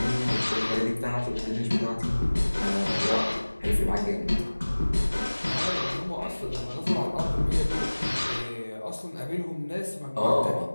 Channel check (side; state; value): both; inverted; correlation -1.00